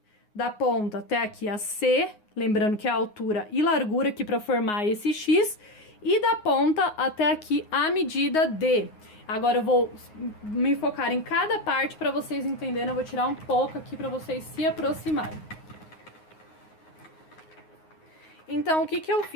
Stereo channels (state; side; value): late; right; 9.6 ms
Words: da ponta até aqui a C, lembrando que é a altura e largura aqui para formar esse X, e da ponta até aqui a medida D. Agora eu vou me focar em cada parte para vocês entenderem, eu vou tirar um pouco aqui para vocês se aproximarem. Então, o que que eu